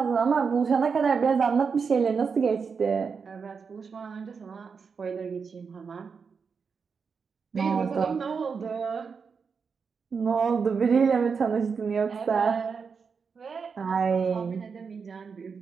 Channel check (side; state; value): left; quieter; 5.6 dB